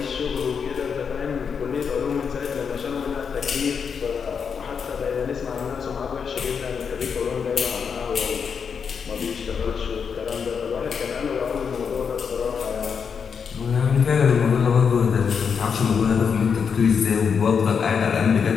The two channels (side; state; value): right; quieter; 6.4 dB